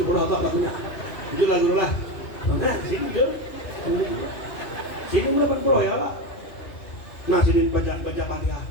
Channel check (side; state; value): right; late; 2.9 ms